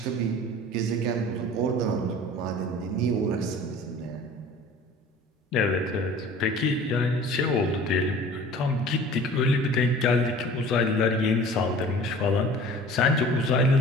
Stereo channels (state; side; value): normal; both; correlation 0.44